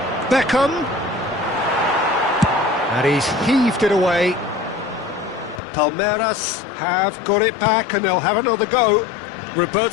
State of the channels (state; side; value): drops out; right; at 5.6 s